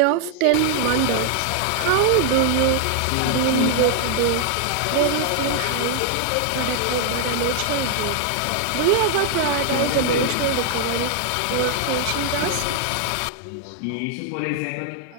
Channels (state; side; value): different; both; correlation 0.00